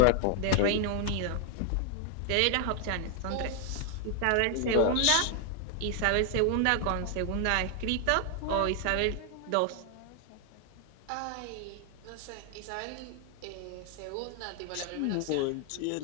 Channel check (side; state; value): both; different; correlation 0.00